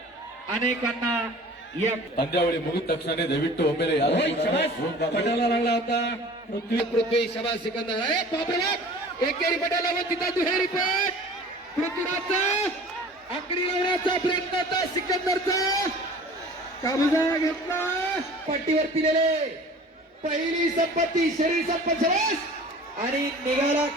अनेकांना या पंजावळी मुगित तक्षणाने दयविಟ್ಟು ಒಮ್ಮೆಲೆ पटाला लागला होता. पृथ्वी शबास सिकंदर आहे. बापरे बाप, एकेरी पटाला व तिथं दुहेरी पट. पृथ्वीराजचा आकडी लावण्याचा प्रयत्न होता, सिकंदरचा कब्जा घेतला. पट्टीवर दिलेले पहिली संपत्ती शरीर संपत शबास आणि निघाला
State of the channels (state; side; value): normal; both; correlation 0.44